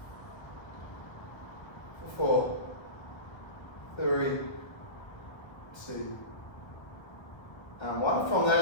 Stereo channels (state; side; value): late; right; 1.2 ms